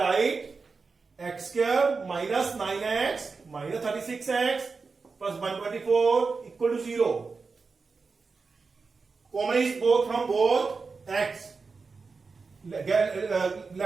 x square minus 9x minus 36x plus 124 equal to 0. Common is both from both x.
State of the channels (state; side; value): quieter; left; 4.5 dB